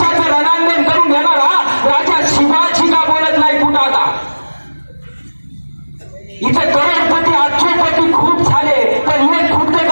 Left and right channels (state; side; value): inverted; both; correlation -1.00